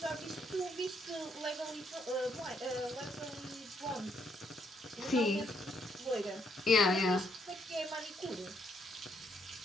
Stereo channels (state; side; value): normal; both; correlation 0.73